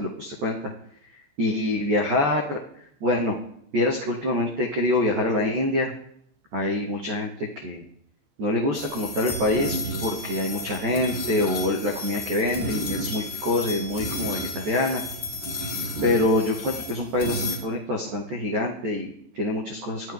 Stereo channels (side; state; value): left; late; 14 ms